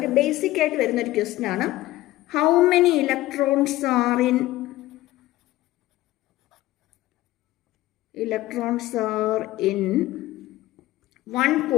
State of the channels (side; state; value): right; quieter; 16.8 dB